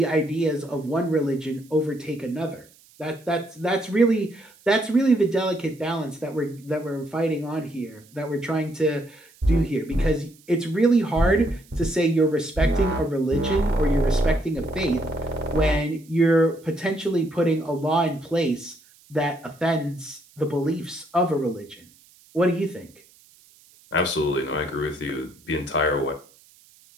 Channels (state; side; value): noise; right; hiss, 28 dB below the sound